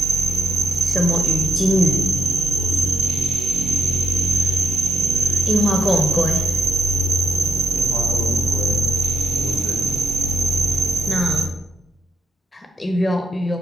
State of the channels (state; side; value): normal; both; correlation 0.79